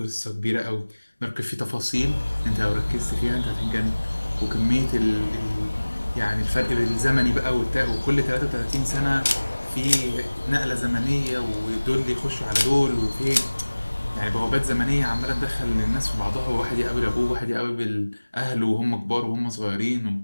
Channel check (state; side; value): inverted; both; correlation -1.00